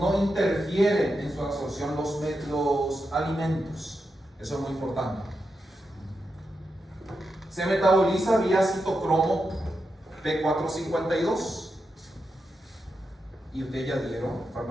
interfieren en su absorción los alimentos. Eso es muy importante. Se metaboliza vía citocromo P452. Y ustedes ya dieron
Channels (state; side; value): normal; both; correlation 0.87